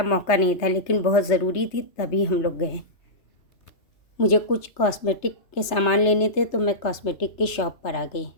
मौका नहीं था, लेकिन बहुत ज़रूरी थी तभी हम लोग गए। मुझे कुछ कॉस्मेटिक के सामान लेने थे तो मैं कॉस्मेटिक की शॉप पर आ गई,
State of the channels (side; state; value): right; late; 3.3 ms